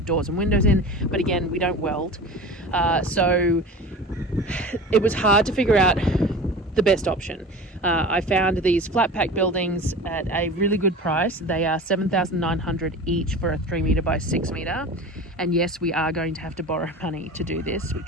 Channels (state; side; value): normal; both; correlation 0.35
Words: doors and windows in, but again, we don't weld. So it was hard to figure out the best option. I found these flat pack buildings at a really good price. They are $7,900 each for a 3-meter by 6-meter. And yes, we are going to have to borrow money to do this,